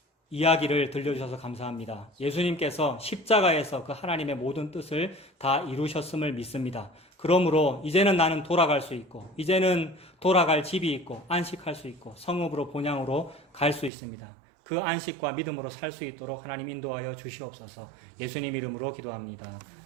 이야기를 들려주셔서 감사합니다. 예수님께서 십자가에서 그 하나님의 모든 뜻을 다 이루셨음을 믿습니다. 그러므로 이제는 나는 돌아갈 수 있고, 이제는 돌아갈 집이 있고, 안식할 수 있고, 성읍으로 본향으로 갈 수 있습니다. 그 안식과 믿음으로 살 수 있도록 하나님 인도하여 주시옵소서. 예수님 이름으로 기도합니다.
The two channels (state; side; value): drops out; left; at 13.9 s